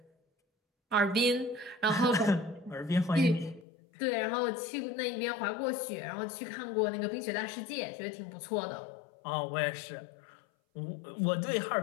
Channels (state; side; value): drops out; right; at 3.7 s